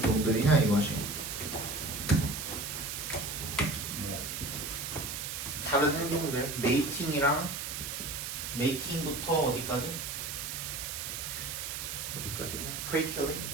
이것이. 다른 행동들, 메이팅부터 어디까지? 어디까지냐? prey killing.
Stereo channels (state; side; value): noise; right; hiss, 5 dB below the sound